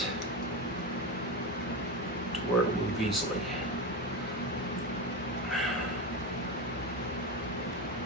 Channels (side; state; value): both; normal; correlation 0.18